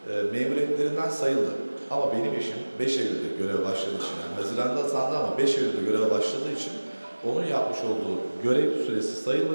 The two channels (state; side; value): inverted; both; correlation -1.00